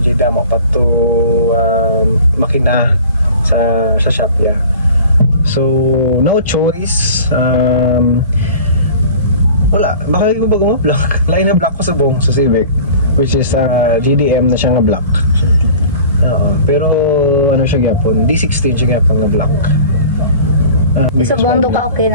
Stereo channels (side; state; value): both; inverted; correlation -0.43